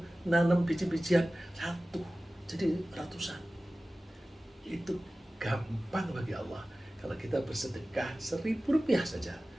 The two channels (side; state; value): both; normal; correlation 0.96